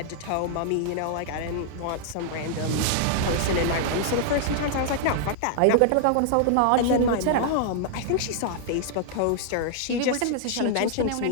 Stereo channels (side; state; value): both; different; correlation -0.01